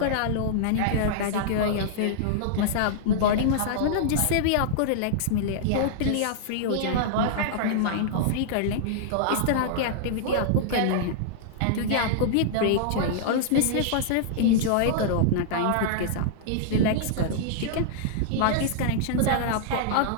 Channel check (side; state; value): both; different; correlation -0.02